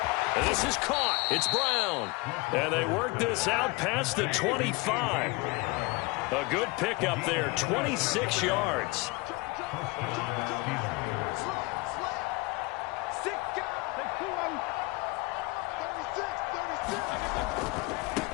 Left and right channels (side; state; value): right; quieter; 24.8 dB